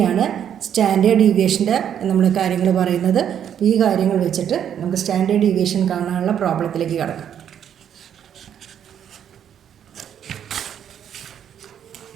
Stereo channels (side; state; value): left; quieter; 9.2 dB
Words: സ്റ്റാൻഡേർഡ് ഡീവിയേഷൻ്റെ നമ്മൾ കാര്യങ്ങൾ പറയുന്നത്. അപ്പോൾ ഈ കാര്യങ്ങൾ വെച്ചിട്ട് നമുക്ക് സ്റ്റാൻഡേർഡ് ഡീവിയേഷൻ കാണാനുള്ള പ്രോബ്ലത്തിലേക്ക് കടക്കാം.